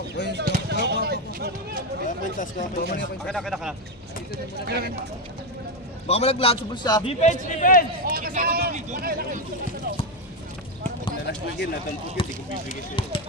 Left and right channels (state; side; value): normal; both; correlation 0.08